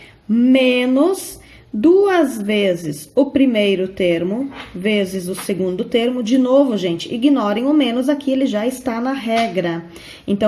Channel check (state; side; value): identical; both; correlation 1.00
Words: menos 2 vezes o primeiro termo, vezes o segundo termo. De novo, gente, ignorem o menos aqui, ele já está na regra.